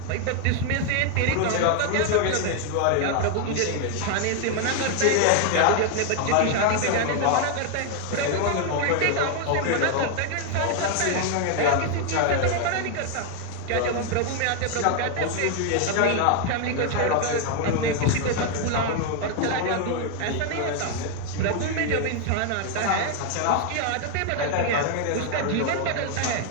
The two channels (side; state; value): both; different; correlation 0.01